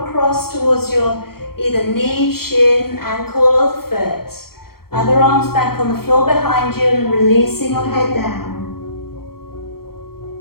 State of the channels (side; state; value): right; late; 0.94 ms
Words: towards your either knee, shin, ankle or the foot. Other arms back on the floor behind you and releasing your head down.